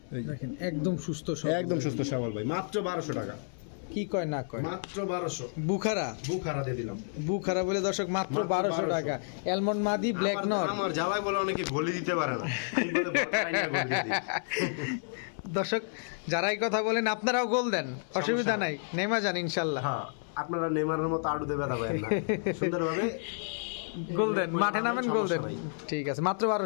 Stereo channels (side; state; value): right; silent; 57 dB below the other